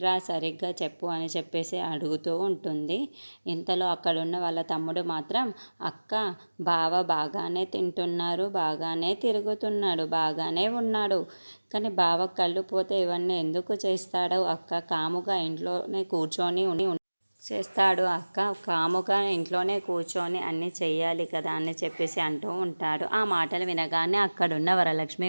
సరిగ్గా చెప్పు అని చెప్పేసి అడుగుతూ ఉంటుంది. ఇంతలో అక్కడున్న వాళ్ళ తమ్ముడు మాత్రం, అక్క బావ బాగానే తింటున్నారు, బాగానే తిరుగుతున్నాడు, బాగానే ఉన్నాడు, కానీ బావ కళ్ళు పోతే ఇవన్నీ ఎందుకు చేస్తాడు అక్క? కాముగా ఇంట్లోనే కూర్చొని చేస్తాడు అక్క, కాముగా ఇంట్లోనే కూర్చొని అన్నీ చెయ్యాలి కదా అని చెప్పేసి అంటూ ఉంటాడు. ఆ మాటలు వినగానే అక్కడున్న వరలక్ష్మి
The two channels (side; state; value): both; inverted; correlation -1.00